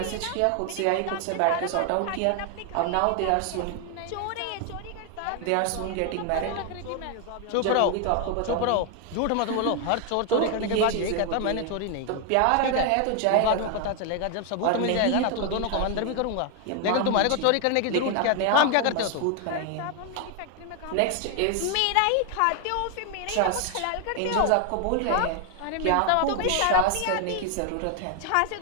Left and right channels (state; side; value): different; both; correlation 0.00